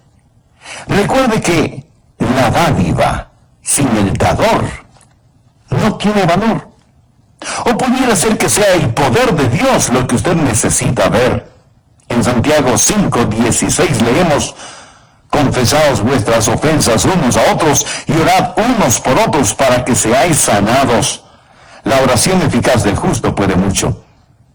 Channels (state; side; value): identical; both; correlation 1.00